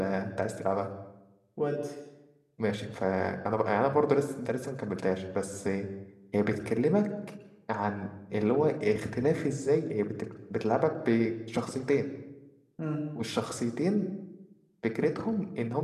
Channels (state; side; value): identical; both; correlation 1.00